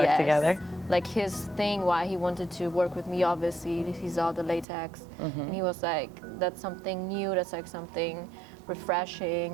together? Like his thing, why he wanted to work with me, obviously, he saw the latex, and he was like, that's something new, that's like something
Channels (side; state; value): left; drops out; at 4.7 s